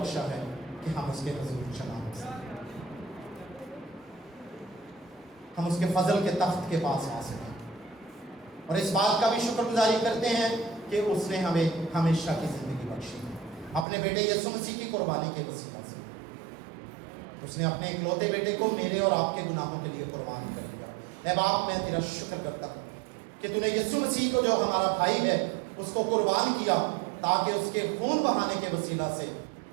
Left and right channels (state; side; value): drops out; left; at 13.9 s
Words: है कि हम उसके हुजूर जमा हो सकें, हम उसके फजल के तख्त के पास आ सकें। और इस बात का भी शुक्रगुजारी करते हैं कि उसने हमें हमेशा की ज़िंदगी बख्शी है, अपने बेटे यीशु मसीह की कुर्बानी के वसीला से। उसने अपने इकलौते बेटे को मेरे और आपके गुनाहों के लिए कुर्बान कर दिया। ऐ बाप, मैं तेरा शुक्र करता हूँ कि तूने यीशु मसीह को, जो हमारा भाई है, उसको कुर्बान किया ताकि उसके खून बहाने के वसीला से